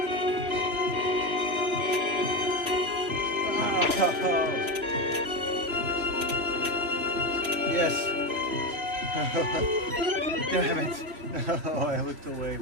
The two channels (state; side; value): late; left; 3.4 ms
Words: Oh, yes. Damn it. Oh, I looked away